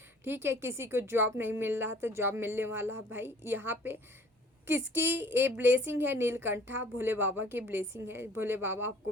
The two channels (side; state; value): both; normal; correlation 0.52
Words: ठीक है। किसी को जॉब नहीं मिल रहा था, जॉब मिलने वाला है भाई। यहाँ पे किसकी ये ब्लेसिंग है? नीलकंठा, भोले बाबा की ब्लेसिंग है। भोले बाबा आपको